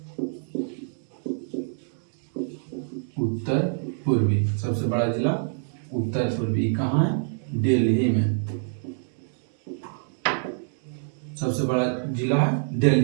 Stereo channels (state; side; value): silent; left; digital silence